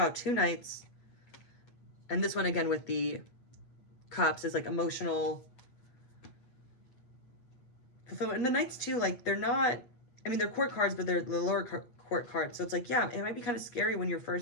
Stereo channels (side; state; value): right; late; 8.4 ms